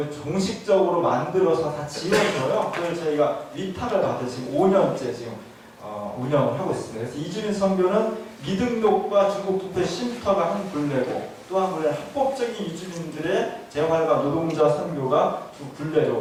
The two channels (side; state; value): both; identical; correlation 1.00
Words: 종식적으로 만들어서 다 지원줘요. 그걸 저희가 위탁을 받아 지금 5년째 지금 운영을 하고 있습니다. 그래서 이주민 선교는 미등록과 중국투표 쉼터가 한 굴레고, 또 한 굴레는 합법적인 이주민들의 재활과 노동자 선교가 두